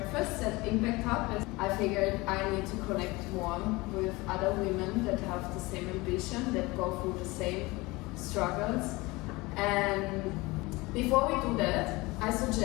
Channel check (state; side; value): quieter; right; 22.6 dB